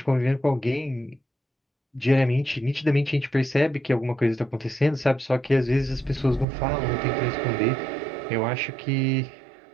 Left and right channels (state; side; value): drops out; left; at 6.5 s